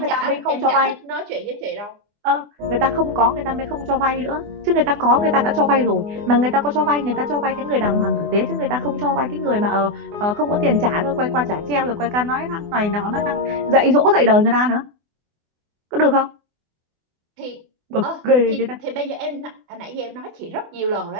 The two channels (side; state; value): left; late; 24 ms